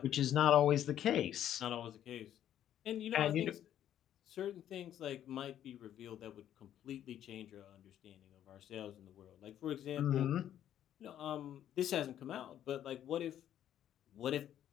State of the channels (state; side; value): quieter; right; 10.9 dB